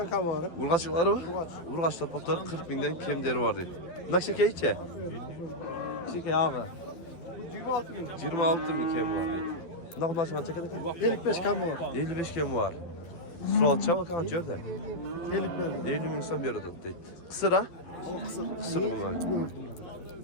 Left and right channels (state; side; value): late; right; 12 ms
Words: kam var. Urgaçlıkları mı? Urgaç torpakları 40 binden kemderi var deydi. Bundan şeker içe? Şeker ağa. 26 bin. 26 bin kem var deydi. Ne kadar açman çeker eken? 55 kam var. 55 kem var. Sual çabuk kan görde. 50 bin. 50 bin insan bir arada deydi. Kısır ha? Kısır bunlar.